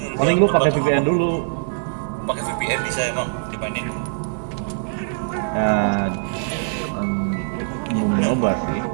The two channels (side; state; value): left; silent; digital silence